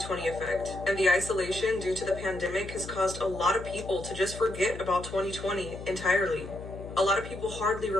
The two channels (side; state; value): left; noise; hum, 11 dB below the sound